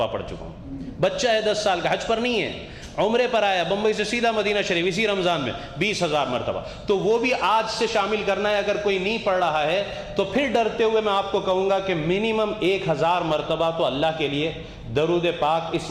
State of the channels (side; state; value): both; identical; correlation 1.00